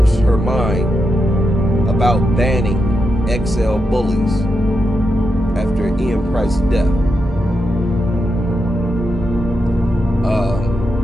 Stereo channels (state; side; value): normal; both; correlation 0.85